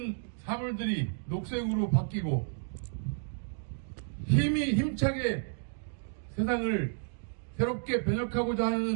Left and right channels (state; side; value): silent; left; digital silence